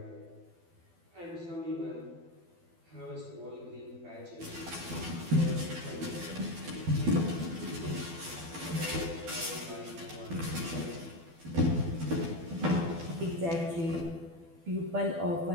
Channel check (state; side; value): late; left; 12 ms